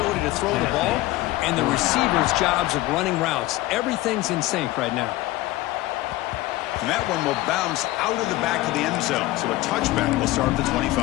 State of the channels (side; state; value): right; quieter; 17.7 dB